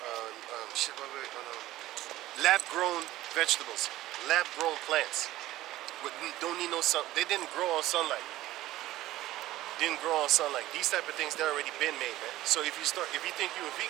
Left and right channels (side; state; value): left; quieter; 15.8 dB